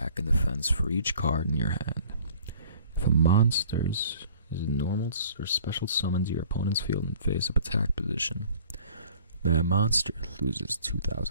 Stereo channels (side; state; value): both; inverted; correlation -0.52